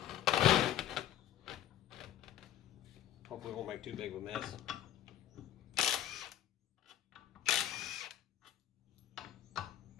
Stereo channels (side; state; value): right; quieter; 11.8 dB